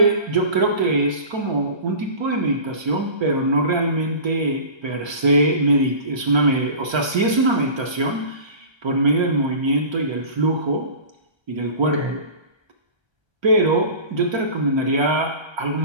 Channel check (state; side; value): late; left; 1.3 ms